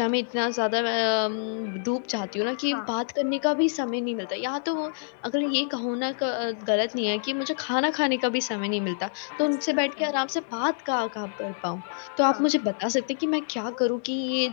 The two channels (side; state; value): right; silent; digital silence